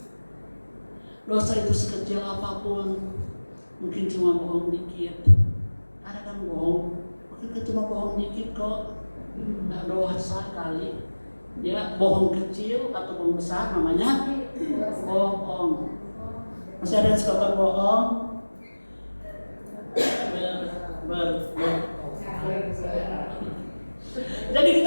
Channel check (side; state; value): both; inverted; correlation -1.00